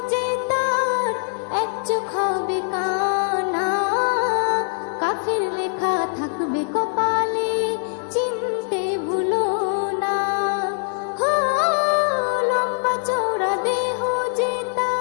যে তার এক চোখ হবে কানা কাফির লেখা থাকবে কপালে চিনতে ভুলো না হো লম্বা চওড়া দেহ যে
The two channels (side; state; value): right; silent; digital silence